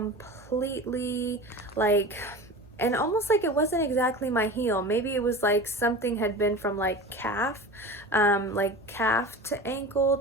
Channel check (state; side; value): normal; both; correlation 0.33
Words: like, and almost like it wasn't exactly my heel. Maybe it was like something had been from like calf to ankle